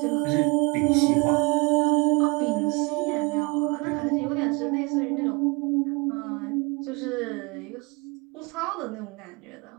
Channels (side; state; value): left; quieter; 28.2 dB